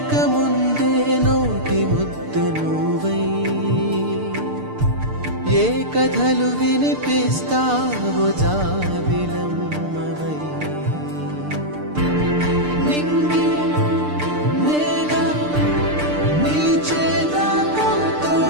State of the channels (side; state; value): left; late; 6.7 ms